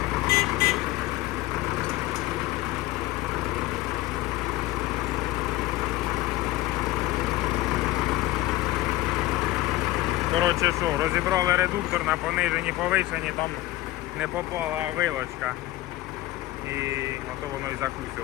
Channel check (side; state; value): right; quieter; 17.0 dB